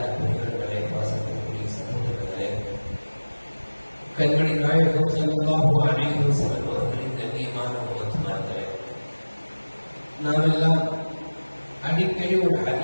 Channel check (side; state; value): both; inverted; correlation -1.00